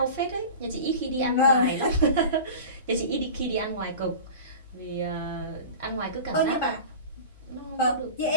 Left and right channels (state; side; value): inverted; both; correlation -0.33